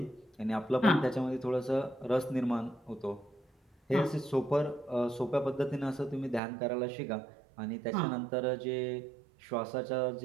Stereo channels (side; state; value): left; drops out; at 6.4 s